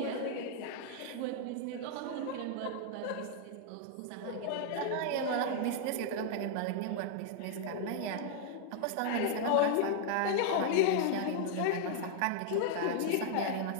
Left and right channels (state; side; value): different; both; correlation 0.00